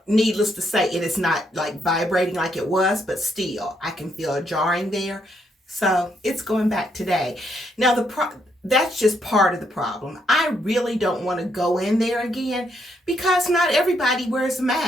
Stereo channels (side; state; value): both; normal; correlation 0.75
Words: needless to say, it is not like vibrating like it was, but still, I can feel a jarring there. So it's going back today. Now, that's just part of the problem. I really don't want to go in there again because not everybody wears a